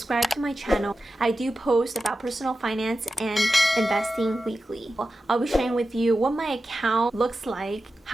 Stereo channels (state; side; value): normal; both; correlation 0.92